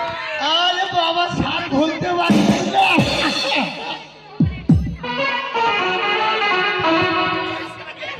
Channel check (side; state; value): both; identical; correlation 1.00